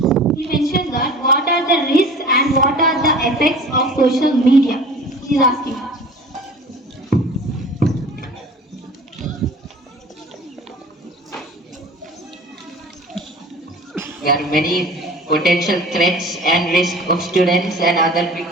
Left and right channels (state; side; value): normal; both; correlation 0.42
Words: He mentioned that what are the risks and what are the effects of social media? He's asking. There are many potential threats and risks of students and other